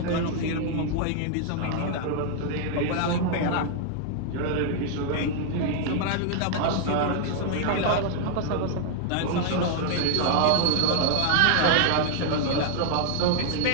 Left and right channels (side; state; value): both; different; correlation 0.00